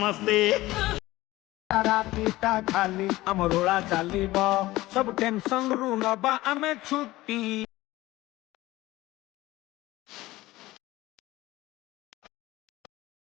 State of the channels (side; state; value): right; quieter; 18.0 dB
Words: रातीटा खाली अमरोड़ा चालीब सब टेंशन रू नबा आमे छुट्टी